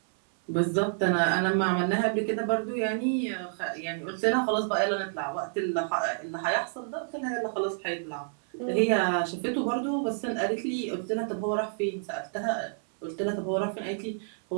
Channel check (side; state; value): left; silent; 59 dB below the other